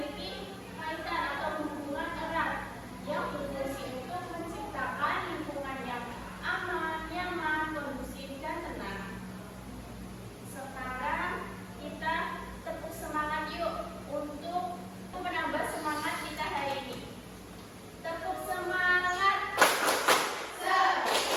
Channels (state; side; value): identical; both; correlation 1.00